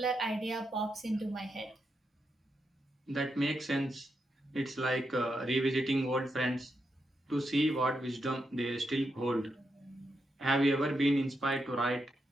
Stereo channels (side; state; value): both; normal; correlation 0.84